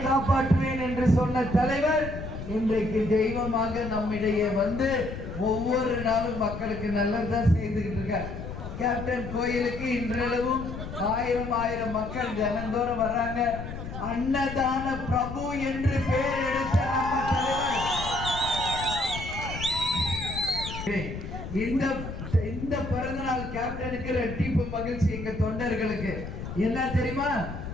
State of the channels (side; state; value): left; noise; rumble, 8 dB below the sound